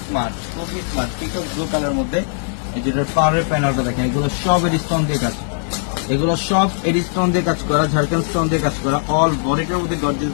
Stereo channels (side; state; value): right; silent; digital silence